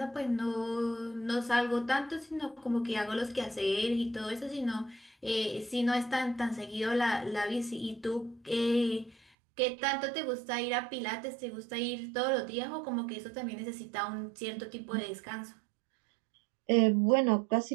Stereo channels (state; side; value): drops out; left; at 9.2 s